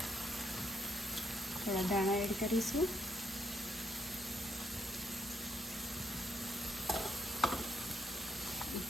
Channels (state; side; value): normal; both; correlation 0.74